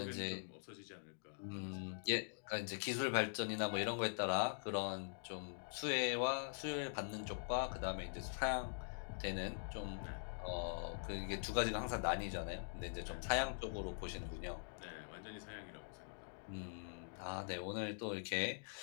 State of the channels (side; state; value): right; silent; digital silence